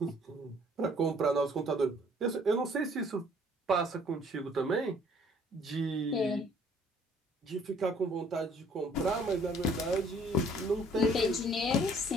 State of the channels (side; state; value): both; normal; correlation 0.58